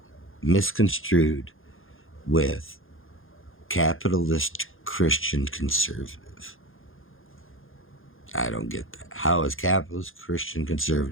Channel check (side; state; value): right; late; 0.59 ms